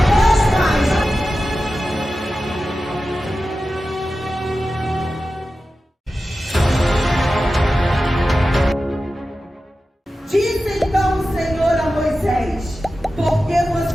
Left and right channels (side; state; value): both; normal; correlation 0.93